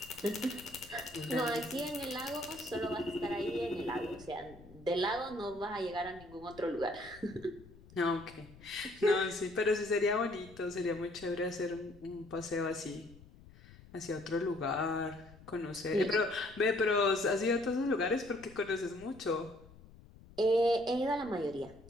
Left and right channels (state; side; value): noise; left; rumble, 21 dB below the sound